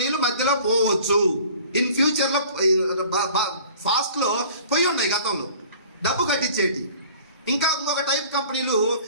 మధ్యలో పోవచ్చు. ఇన్ ఫ్యూచర్లో ఫాస్ట్లో పోయి ఉన్నాయి గతంలో డబ్బు కట్టించేటి. ఇంకా ఇంకొక టైప్ కంపెనీలు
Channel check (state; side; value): inverted; both; correlation -0.48